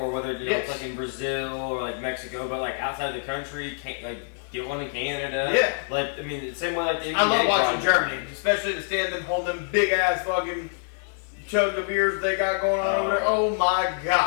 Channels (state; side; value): silent; right; digital silence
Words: whether it's like in Brazil or like Mexico, but like outside the country, get one in Canada. Yeah, like I mean, the same way like the NBA I love watching Germany, especially to stand and hold them big ass fucking chug of beers they got going on over there. Oh my